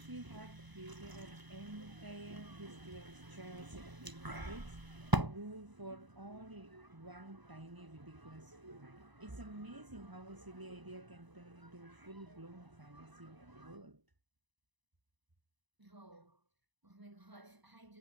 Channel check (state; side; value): late; left; 1.0 ms